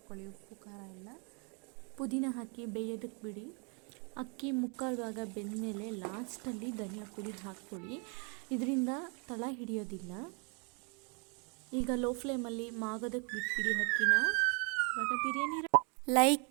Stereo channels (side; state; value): left; quieter; 35.7 dB